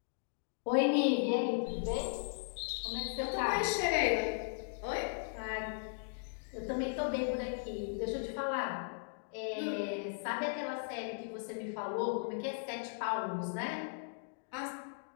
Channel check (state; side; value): silent; right; digital silence